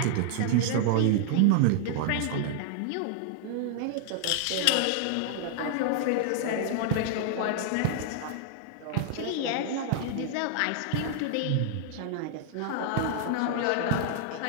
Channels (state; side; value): different; both; correlation -0.01